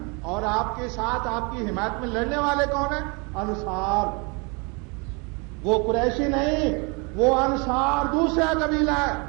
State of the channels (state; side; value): quieter; left; 31.2 dB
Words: اور آپ کے ساتھ آپ کی حمایت میں لڑنے والے کون ہیں؟ انصار۔ وہ قریشی نہیں، وہ انصار دوسرا قبیلہ ہے۔